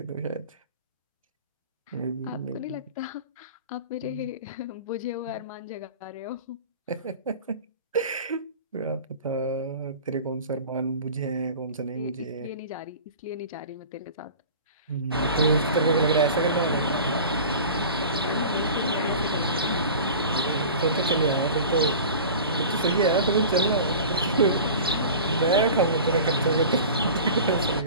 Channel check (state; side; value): inverted; both; correlation -0.37